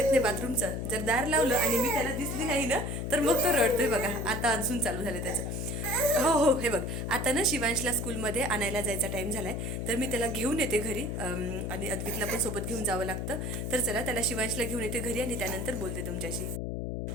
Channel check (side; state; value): left; noise; hum, 3 dB below the sound